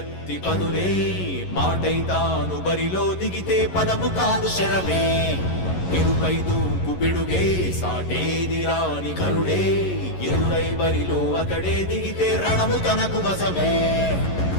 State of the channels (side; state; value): right; late; 11 ms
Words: పదులే మాటై తాను బరిలో దిగితే పదము కాదు శరమే ఎరుపై దూకు పిడుగే సాటేది రాని కరుడే ఎరురై బరిలో అతడే దిగితే రణము తనకు వశమే